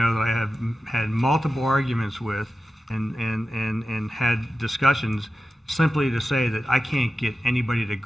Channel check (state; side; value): normal; both; correlation 0.93